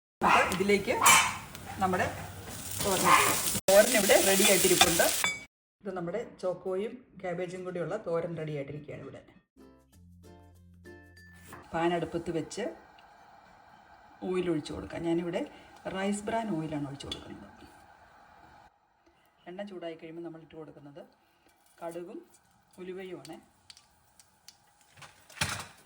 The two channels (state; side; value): identical; both; correlation 1.00